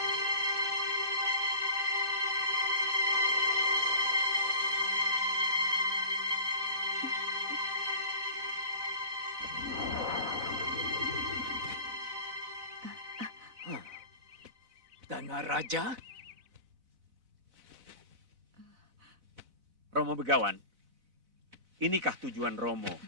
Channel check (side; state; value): left; late; 4.0 ms